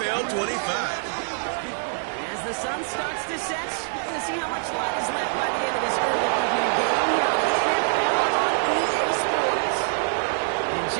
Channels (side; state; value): left; silent; digital silence